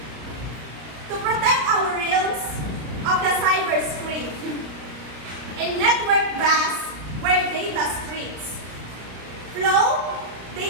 to protect our realms of the cyber screen. In network bass where data streams flow,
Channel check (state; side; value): late; left; 33 ms